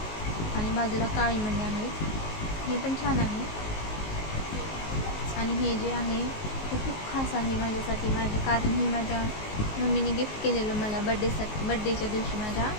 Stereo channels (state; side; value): late; right; 19 ms